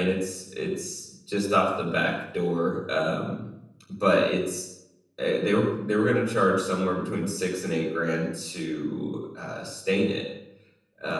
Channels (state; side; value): identical; both; correlation 1.00